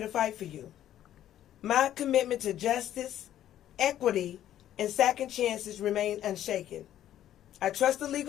fight for you. My commitment to justice, equity, and second chances remain unshaken. I trust the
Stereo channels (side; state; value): right; quieter; 11.9 dB